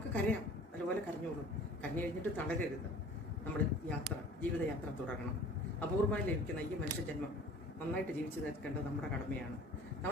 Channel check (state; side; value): normal; both; correlation 0.47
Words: കരയാം, അതുപോലെ കരഞ്ഞോളൂ. കരഞ്ഞു കഴിഞ്ഞിട്ട് തളരരുത്. നമ്മുടെ ജീവിതയാത്ര തുടരണം. അപൂർവമായി ലഭിക്കുന്ന ഈ മനുഷ്യജന്മം നന്നായിട്ട് ജീവിച്ചു തീർക്കേണ്ടത് നമ്മുടെ കടമയാണ്.